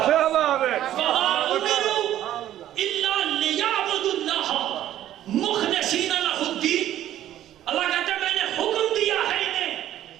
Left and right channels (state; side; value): quieter; left; 12.3 dB